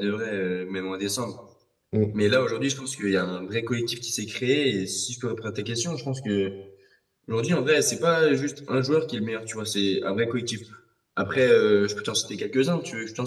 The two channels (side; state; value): both; identical; correlation 1.00